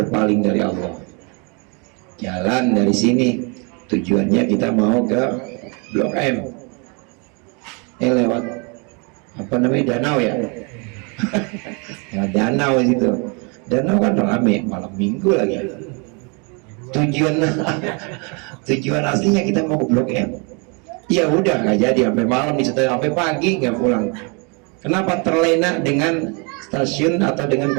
dari Allah. Jalan dari sini tujuannya kita mau ke Blok M, lewat apa namanya, danau ya. Ya danau itu, danau kan rame, malam minggu lagi. Tujuan aslinya kita mau ke Blok M, ya udah nggak jadi, sampai malam sampai pagi nggak pulang. Kenapa? Terlena dengan stasiun atau dengan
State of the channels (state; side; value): quieter; left; 33.3 dB